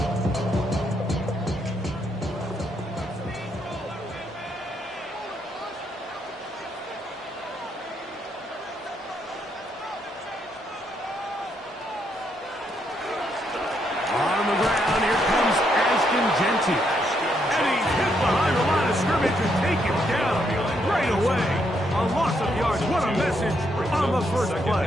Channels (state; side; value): normal; both; correlation 0.76